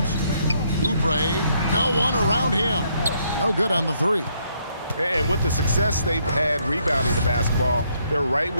Oubre, no one around him. No good on the 3. And with the success they've had rebounding the basketball, they're right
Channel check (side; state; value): both; inverted; correlation -0.71